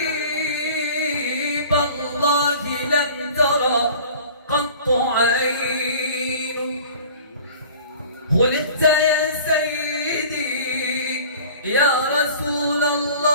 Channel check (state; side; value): inverted; both; correlation -0.44